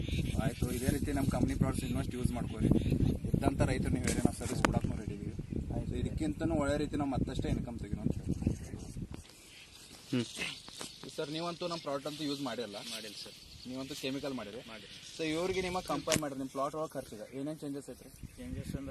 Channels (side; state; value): both; identical; correlation 1.00